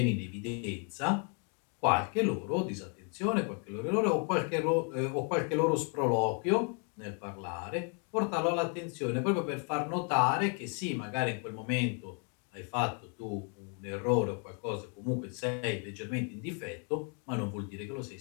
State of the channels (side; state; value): right; quieter; 39.8 dB